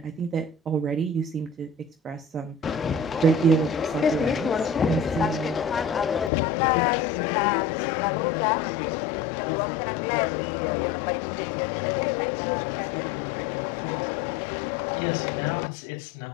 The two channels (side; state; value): right; drops out; at 6.3 s